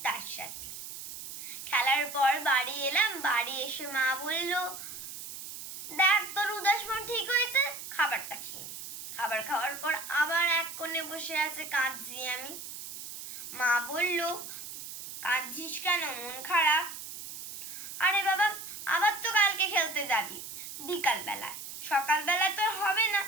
তার সাথে খেলার পর বাড়ি এলাম। বাড়ি এসে মা বলল, দেখ তোর উদাস মন ঠিক হয়েছে, খাবারটা খেয়ে নে। খাবার খাওয়ার পর আবার এক কোণে বসে আছে, কাঁদছি আমি। মা বলল, কাঁদছিস কেন, মন খারাপ? আরে বাবা, আবার তো কালকে খেলতে যাবি বিকাল বেলায়, সকাল বেলায় তো হবে না,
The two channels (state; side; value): noise; right; hiss, 10 dB below the sound